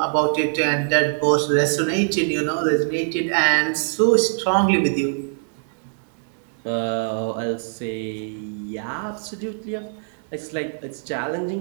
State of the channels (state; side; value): silent; left; 61 dB below the other